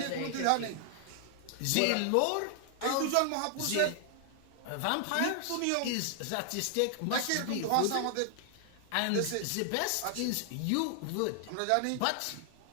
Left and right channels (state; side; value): different; both; correlation 0.00